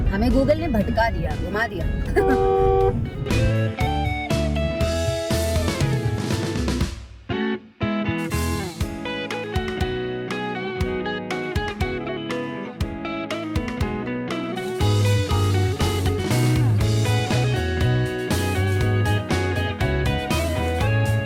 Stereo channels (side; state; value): both; identical; correlation 1.00